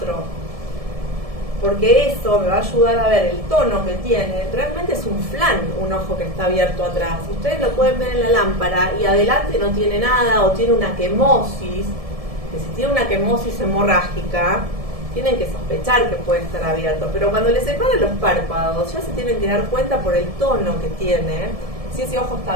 Porque eso me va a ayudar a ver el tono que tiene. Realmente es un flan, un ojo que está abierto atrás. Ustedes lo pueden ver en la lámpara y adelante no tiene nada o tiene una quemosis. Que si tiene una quemosis hemorrágica, tienen que sospechar que puede estar abierto. Pero cuando les separan los párpados, ya se tienen que dar cuenta por el tono que tiene, si ese ojo está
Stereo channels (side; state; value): left; late; 1.7 ms